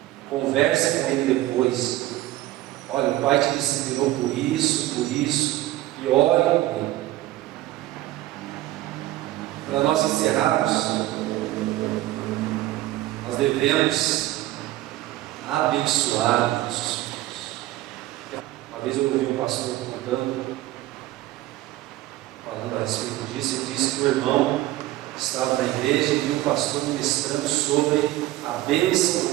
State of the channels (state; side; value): quieter; left; 16.1 dB